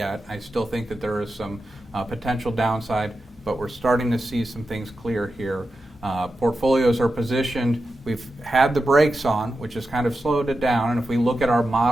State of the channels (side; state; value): both; normal; correlation 0.90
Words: I still think that there is some potential downside, but we're starting to see some things clear here. Portfolios are positioned. We've had the brakes on, which has kind of slowed it down. And if we look at our